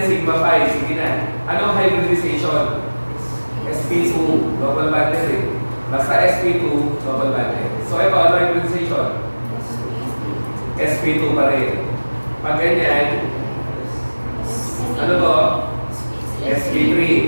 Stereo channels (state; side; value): inverted; both; correlation -1.00